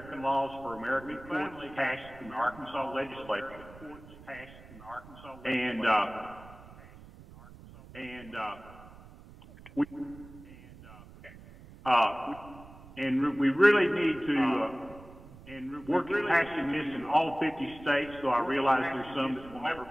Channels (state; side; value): noise; right; rumble, 19 dB below the sound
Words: laws for American courts passed in the Arkansas legislature. We really need to work at passing this in all 50 states, so I realize there's some that will never